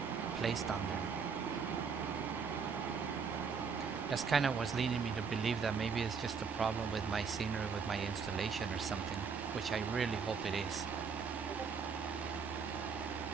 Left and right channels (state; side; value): quieter; left; 5.8 dB